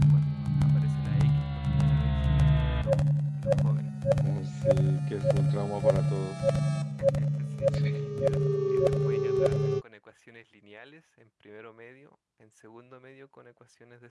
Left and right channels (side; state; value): both; identical; correlation 1.00